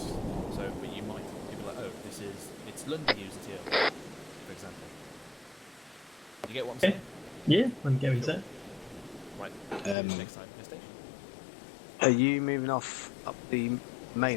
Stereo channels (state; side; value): drops out; right; at 10.0 s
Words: So, but you might. You'll be like, oh, it's London users here, for example. You get what I'm saying? Yeah, I can get what you're saying. Right. Next time, next station. Are you moving off up the